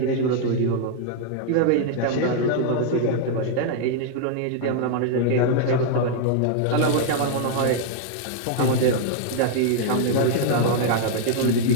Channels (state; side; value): different; both; correlation -0.01